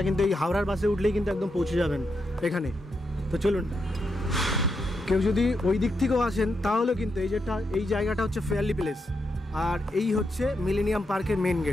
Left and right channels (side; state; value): both; normal; correlation 0.83